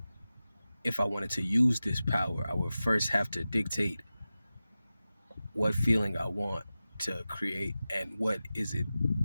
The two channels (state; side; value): inverted; both; correlation -0.95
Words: if I wanted to use this power, I would first have to dictate what feeling I want to create and what is it.